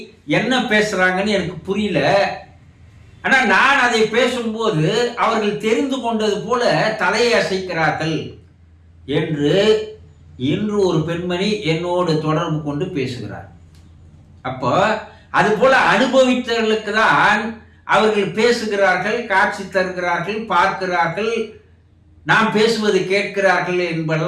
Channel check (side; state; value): both; identical; correlation 1.00